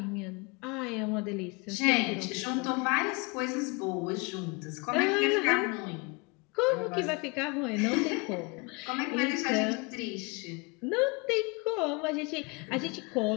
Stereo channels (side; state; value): right; quieter; 29.3 dB